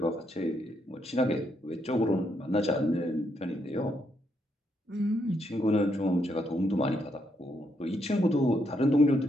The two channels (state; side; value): normal; both; correlation 0.77